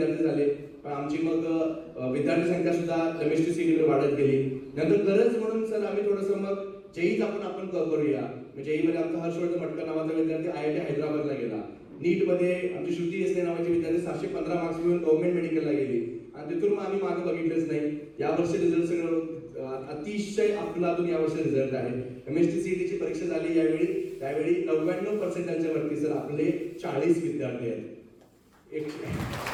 झाले. पण आमची मग विद्यार्थी संख्या सुद्धा MSTCT मध्ये वाढत गेली. नंतर गरज म्हणून सर आम्ही थोडंसं मग जेईच आपण करूया. जेई मध्ये आमचा हर्षवर्धन मटकर नावाचा विद्यार्थी IIT हैदराबादला गेला. नीट मध्ये आमची श्रुती देसले नावाची विद्यार्थी 715 मार्क्स घेऊन गव्हर्नमेंट मेडिकलला गेली आणि तिथून मग आम्ही मागे बघितलंच नाही. यावर्षी रिझल्ट सगळं अतिशय अफलातून यावर्षी रिझल्ट आहे. MSTCT ची परीक्षा झाली त्यावेळी 99% वरती सर आपले 40 विद्यार्थी आहेत.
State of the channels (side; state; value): both; identical; correlation 1.00